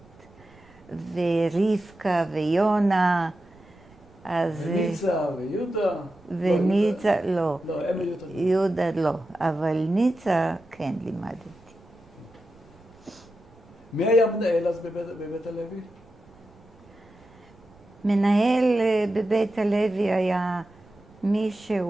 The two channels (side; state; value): right; noise; rumble, 27 dB below the sound